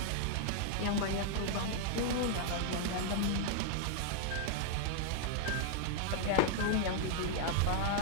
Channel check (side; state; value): both; different; correlation 0.00